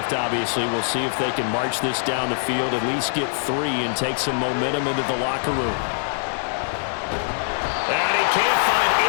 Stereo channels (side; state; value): right; silent; digital silence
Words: obviously. We'll see if they can march this down the field, at least get 3 and take some momentum into the locker room. And he can't find